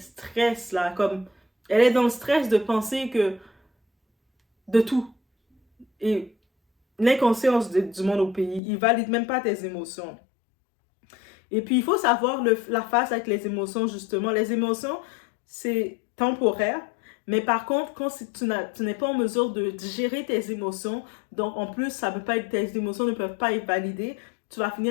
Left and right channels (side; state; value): right; drops out; at 8.6 s